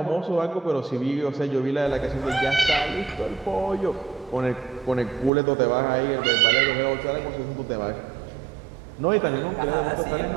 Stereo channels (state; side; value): drops out; left; at 5.3 s